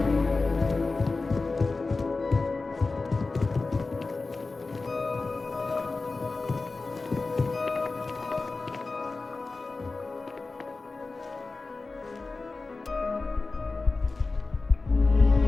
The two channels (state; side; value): quieter; right; 3.7 dB